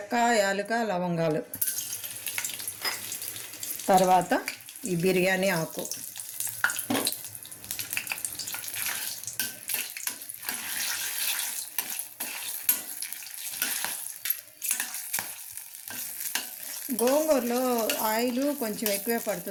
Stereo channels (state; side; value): identical; both; correlation 1.00